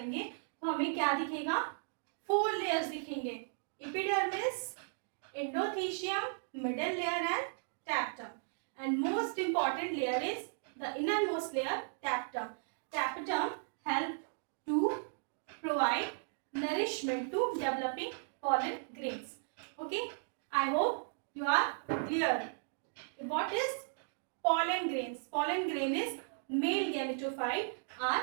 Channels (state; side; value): silent; left; digital silence